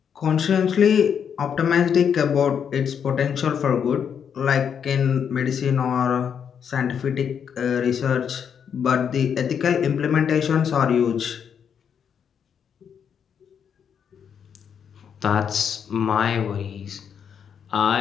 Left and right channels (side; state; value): right; quieter; 7.6 dB